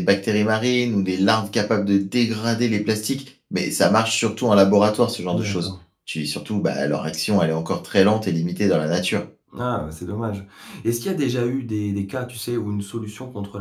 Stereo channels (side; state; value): both; identical; correlation 1.00